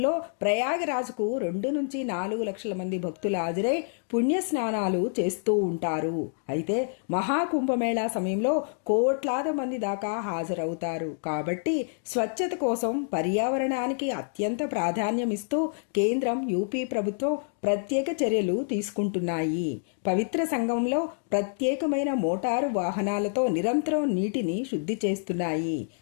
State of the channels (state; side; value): silent; right; digital silence